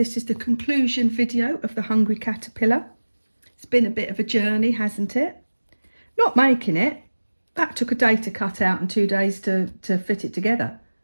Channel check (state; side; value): inverted; both; correlation -1.00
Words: is the conclusion video of the Hungry Caterpillar. It's been a bit of a journey, hasn't it? Not making it. That took a day to cut out and 2 days to fit it together.